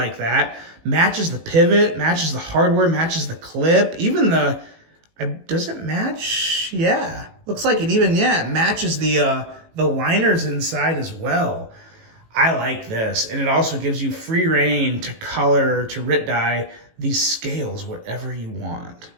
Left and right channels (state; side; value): late; left; 18 ms